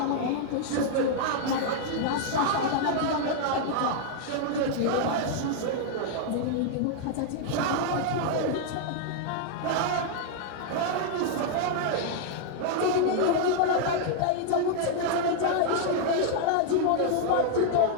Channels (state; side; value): different; both; correlation -0.01